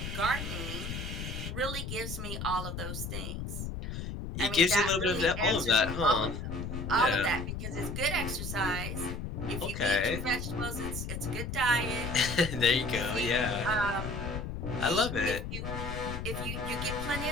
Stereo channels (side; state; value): left; noise; rumble, 5 dB below the sound